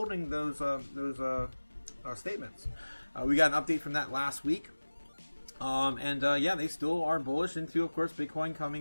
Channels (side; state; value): both; inverted; correlation -1.00